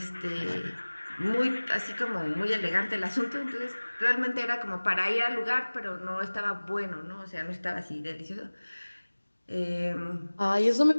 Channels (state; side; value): inverted; both; correlation -1.00